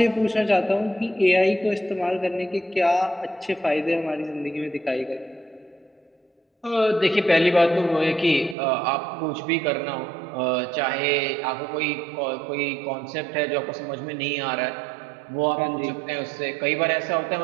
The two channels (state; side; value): drops out; left; at 8.6 s